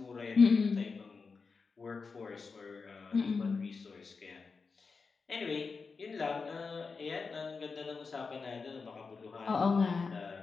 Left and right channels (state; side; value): quieter; right; 4.8 dB